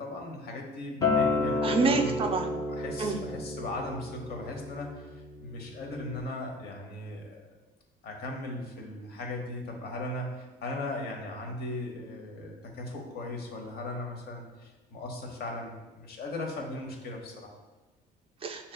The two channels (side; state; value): both; normal; correlation 0.41